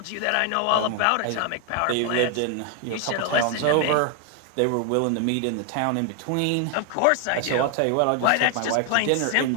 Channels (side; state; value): both; different; correlation 0.00